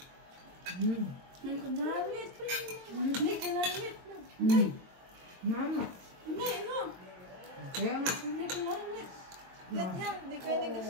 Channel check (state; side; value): late; left; 22 ms